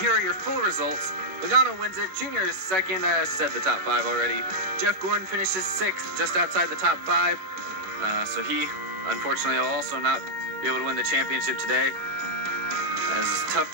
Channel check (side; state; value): left; late; 11 ms